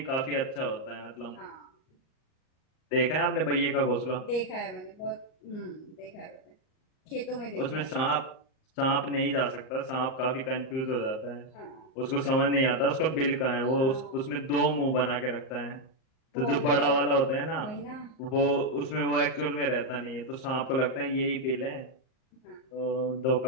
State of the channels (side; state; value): right; late; 38 ms